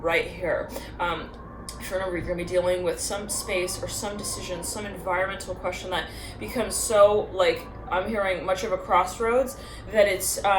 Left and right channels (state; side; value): identical; both; correlation 1.00